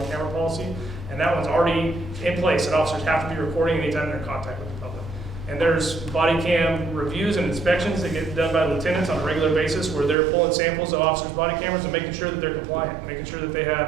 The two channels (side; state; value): left; drops out; at 10.2 s